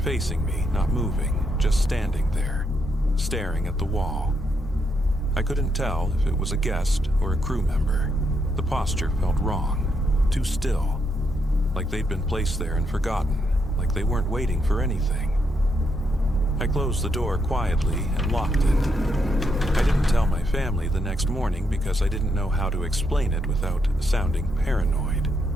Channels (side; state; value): both; normal; correlation 0.78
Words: facing me, not moving, just standing there, staring at the wall. I couldn't tell if it was a guest or a crew member. The posture felt wrong, too still, like they'd been placed there and forgotten, like they weren't waiting for anything. I closed the door quietly and locked it. I didn't tell my family the next morning because I didn't know how to explain it without sounding paranoid.